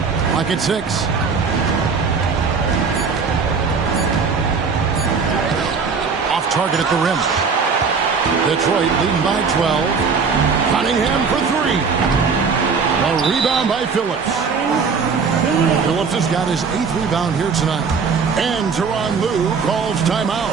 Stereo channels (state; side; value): quieter; left; 5.4 dB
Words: Lock at 6. Off target at the rim. Detroit leading by 12. Cunningham for 3. A rebound by Phillips. Phillips has got his 8th rebound here tonight. And Tyronn Lue calls